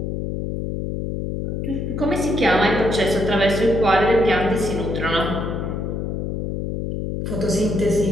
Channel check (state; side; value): noise; left; hum, 3 dB below the sound